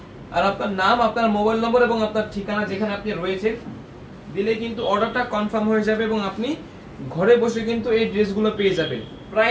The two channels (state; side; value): identical; both; correlation 1.00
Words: আর আপনার নাম, আপনার মোবাইল নম্বর এবং আপনার ঠিকানা যেখানে আপনি রয়েছেন দিলেই কিন্তু অর্ডারটা কনফার্ম হয়ে যাবে, এবং আপনি ঘরে বসে কিন্তু এই ড্রেসগুলো পেয়ে যাবেন।